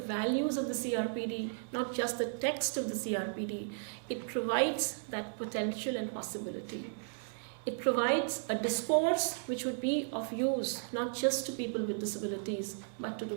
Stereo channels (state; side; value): silent; left; digital silence